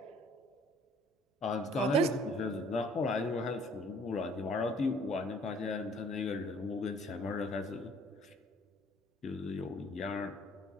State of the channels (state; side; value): normal; both; correlation 0.57